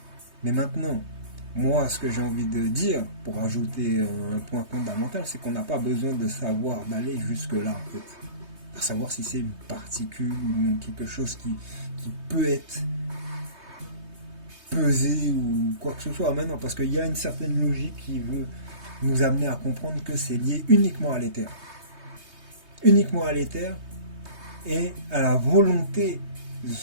Mais maintenant, moi ce que j'ai envie de dire, pour ajouter un point fondamental, c'est qu'on n'a pas besoin de savoir, d'aller jusque là en fait. À savoir si c'est une particule ou quelque chose qui peut être pesé ou quoi que ce soit maintenant, parce qu'il y a une certaine logique qui veut nous amener à comprendre que c'est lié uniquement à l'éther. Uniquement à l'éther et à la volonté de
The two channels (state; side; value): late; left; 3.2 ms